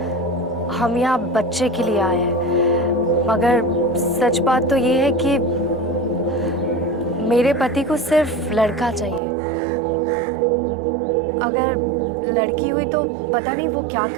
हम यहाँ बच्चे के लिए आए हैं, मगर सच बात तो ये है कि मेरे पति को सिर्फ लड़का चाहिए। अगर लड़की हुई तो पता नहीं वो क्या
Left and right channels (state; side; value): drops out; left; at 9.2 s